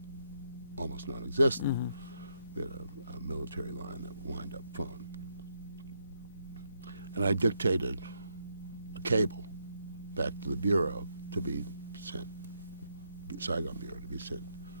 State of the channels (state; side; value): inverted; both; correlation -0.78